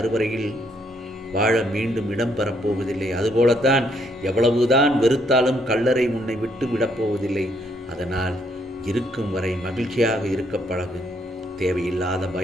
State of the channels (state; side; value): normal; both; correlation 0.71